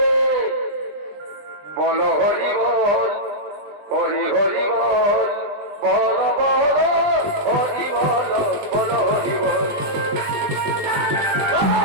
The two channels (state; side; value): late; left; 20 ms